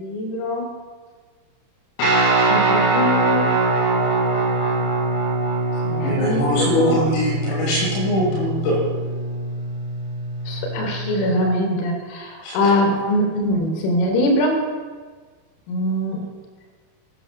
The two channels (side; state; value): right; late; 31 ms